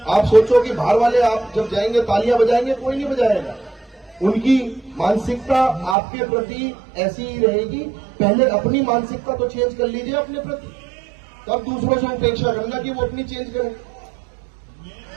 आप सोचो कि बाहर वाले आप जब जाएंगे तालियां बजाएंगे, कोई नहीं बजाएगा। उनकी मानसिकता आपके प्रति ऐसी ही रहेगी। पहले अपनी मानसिकता तो चेंज कर लीजिए अपने प्रति, तब दूसरों से अपेक्षा करना कि वो अपनी चेंज करें।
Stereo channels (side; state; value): left; drops out; at 6.0 s